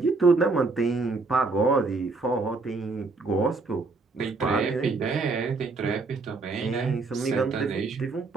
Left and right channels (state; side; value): quieter; left; 3.8 dB